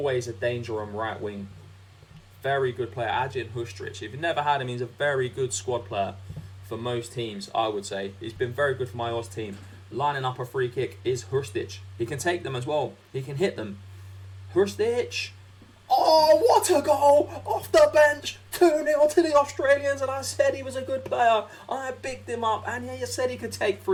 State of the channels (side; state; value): both; identical; correlation 1.00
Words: a danger on right wing. Very good player, Ajin Hustric. If you've never had him, he's a very good squad player for most teams, I would say. He's been very good for my Oz team. Lining up a free kick is Hustric. He can take them as well. He can hit them. Hustric. Oh, what a goal! Off the bench. 2-0 to the Australians, and I said he was a good player. I bigged him up, and he said he could take